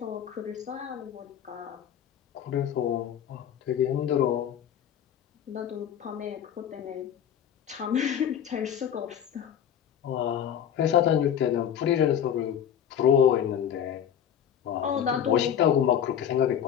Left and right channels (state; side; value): quieter; right; 9.2 dB